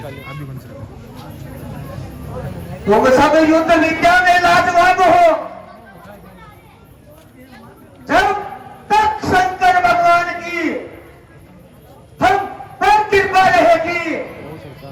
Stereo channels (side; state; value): both; identical; correlation 1.00